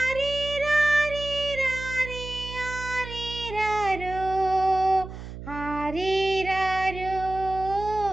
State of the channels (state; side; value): noise; right; hum, 11 dB below the sound